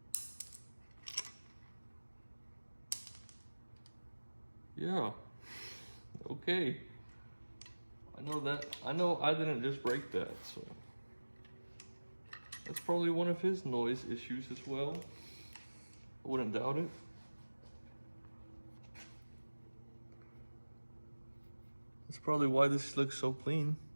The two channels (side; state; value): both; inverted; correlation -1.00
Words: Yeah, okay. I know that, I know I didn't just break that, so. That's probably one of his noise issues as well. I wouldn't doubt it. That's probably why this looks so clean.